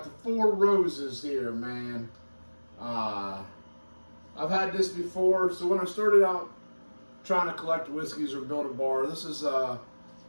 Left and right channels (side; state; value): both; inverted; correlation -1.00